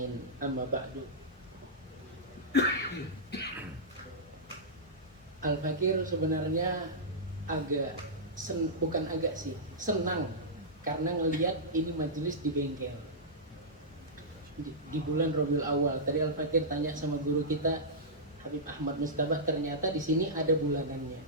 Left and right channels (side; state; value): both; normal; correlation -0.13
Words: Amma ba'du. Al-Fakir sebenarnya senang karena ngelihat ini majelis di bengkel di bulan Rabiul Awal. Tadi Al-Fakir tanya sama guru kita Habib Ahmad Mustabah, ternyata di sini ada bulanannya.